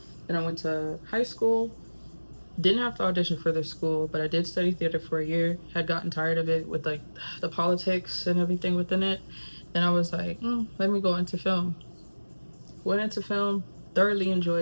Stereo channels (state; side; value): inverted; both; correlation -1.00